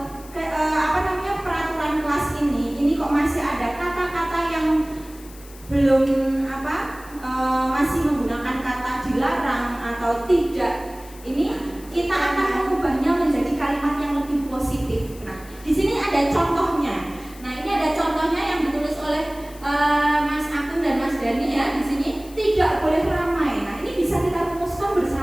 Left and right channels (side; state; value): left; noise; hiss, 21 dB below the sound